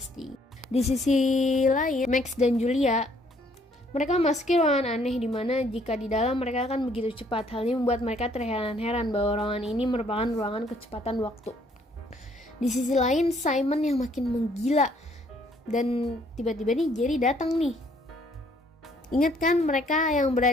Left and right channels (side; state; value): both; normal; correlation 0.64